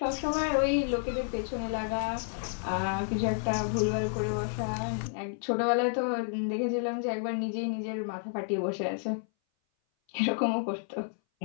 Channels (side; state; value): right; silent; 57 dB below the other